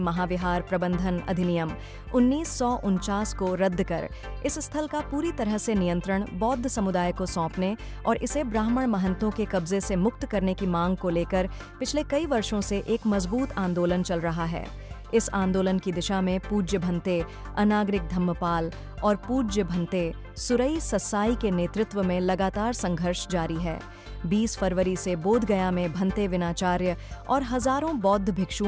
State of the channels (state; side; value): identical; both; correlation 1.00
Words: प्रबंधन अधिनियम 1949 को रद्द कर इस स्थल का पूरी तरह से नियंत्रण बौद्ध समुदाय को सौंपने और इसे ब्राह्मण महंतों के कब्जे से मुक्त करने की मांग को लेकर पिछले कई वर्षों से एक मजबूत आंदोलन चल रहा है। इस आंदोलन की दिशा में पूज्य भंते अनागरिक धम्मपाल और पूज्य भंते सुरई ससाई के नेतृत्व में लगातार संघर्ष जारी है। 20 फरवरी से बोध गया में भंते विनाचार्य और हजारों बौद्ध